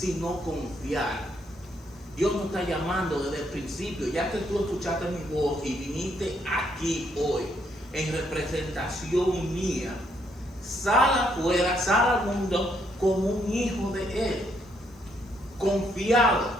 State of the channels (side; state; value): both; normal; correlation 0.73